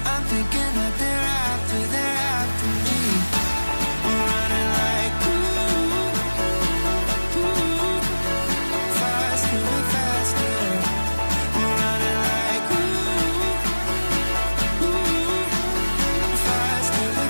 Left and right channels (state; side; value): inverted; both; correlation -1.00